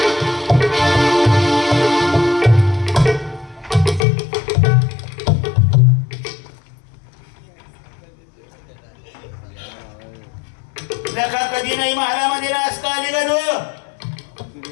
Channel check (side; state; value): right; drops out; at 4.0 s